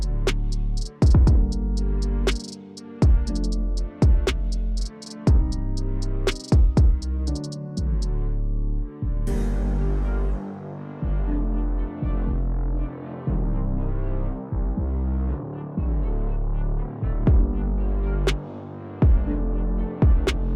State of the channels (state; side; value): identical; both; correlation 1.00